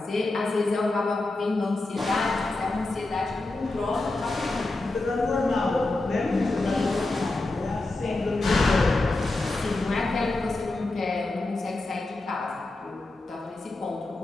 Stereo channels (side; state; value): right; quieter; 3.0 dB